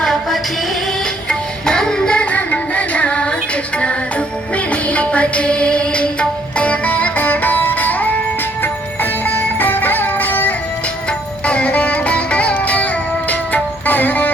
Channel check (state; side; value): normal; both; correlation 0.66